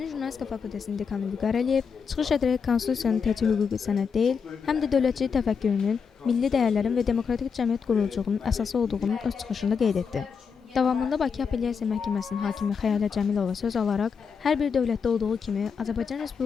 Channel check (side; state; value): right; quieter; 6.1 dB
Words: Jurnalistika fakültəsinin dekanı Vüqar Əliyev çıxış edərək konstitusiyanın təkcə hüquqi sənəd deyil, həm də dövlətçilik təfəkkürünün, milli dəyərlərin və demokratik cəmiyyət quruculuğunun əsası olduğunu öz çıxışında qeyd etdi. Davamında Bakı Apellyasiya Məhkəməsinin hakimi Xəyalə Cəmilova söz alaraq, hər bir dövlətdə olduğu kimi Azərbaycan